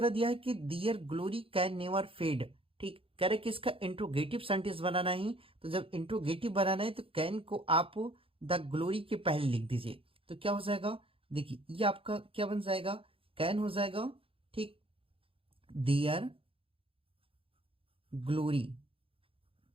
दिया है कि दियर ग्लोरी कैन नेवर फेड। ठीक, कह रहे कि इसका इंट्रोगेटिव सेंटेंस बनाना है, तो जब इंट्रोगेटिव बनाना है तो कैन को आप द ग्लोरी के पहले लिख दीजिए, तो क्या हो जाएगा, देखिए ये आपका क्या बन जाएगा, कैन हो जाएगा। ठीक, दियर ग्लोरी,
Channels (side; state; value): left; late; 0.27 ms